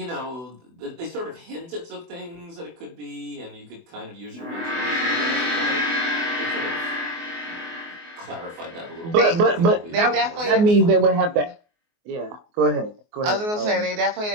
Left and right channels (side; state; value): left; late; 24 ms